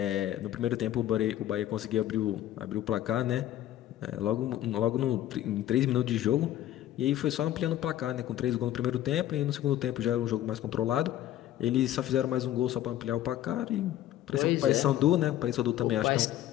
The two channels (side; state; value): right; quieter; 12.8 dB